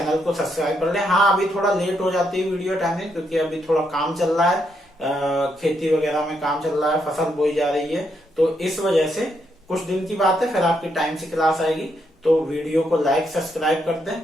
को सब्सक्राइब कर लें। हाँ, अभी थोड़ा लेट हो जाती है वीडियो टाइमिंग, क्योंकि अभी थोड़ा काम चल रहा है, खेती वगैरह में काम चल रहा है, फसल बोई जा रही है, तो इस वजह से कुछ दिन की बात है, फिर आपकी टाइम से क्लास आएगी। तो वीडियो को लाइक सब्सक्राइब कर दें,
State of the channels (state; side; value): normal; both; correlation 0.78